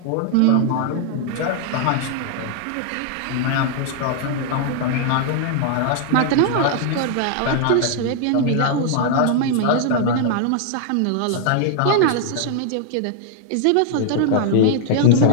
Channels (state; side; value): different; both; correlation -0.01